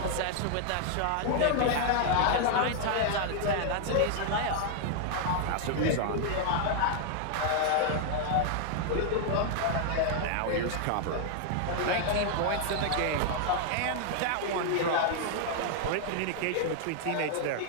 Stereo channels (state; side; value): different; both; correlation 0.00